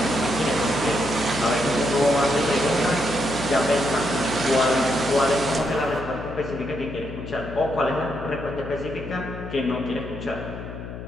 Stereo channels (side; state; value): left; noise; hum, 10 dB below the sound